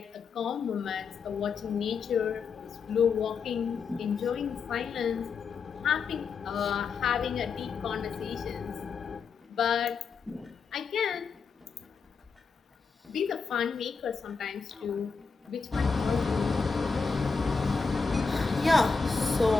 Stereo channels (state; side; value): quieter; right; 5.2 dB